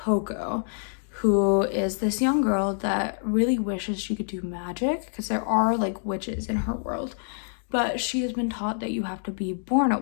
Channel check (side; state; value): right; silent; digital silence